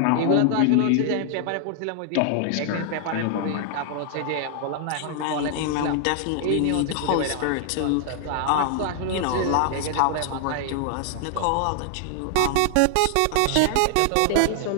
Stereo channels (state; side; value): different; both; correlation 0.00